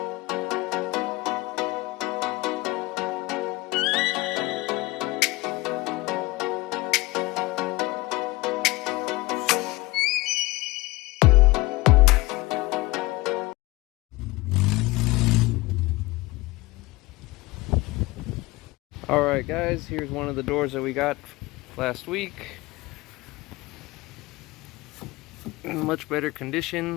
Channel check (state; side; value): quieter; right; 21.5 dB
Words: Alright guys, here's one of the doors that we got last week. In much better